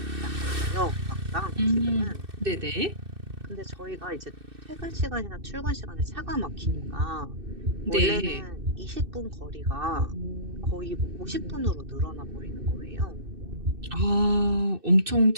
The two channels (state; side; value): late; left; 2.6 ms